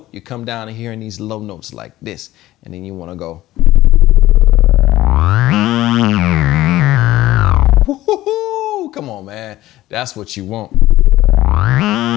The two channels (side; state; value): right; quieter; 15.7 dB